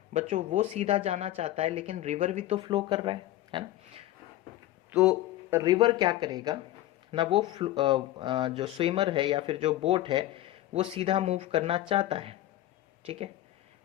बच्चों वो सीधा जाना चाहता है लेकिन रिवर भी तो फ्लो कर रहा है ना। तो रिवर क्या करेगा ना, वो जो स्विमर है या फिर जो बोट है वो सीधा मूव करना चाहता है, ठीक है,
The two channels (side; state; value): right; quieter; 14.7 dB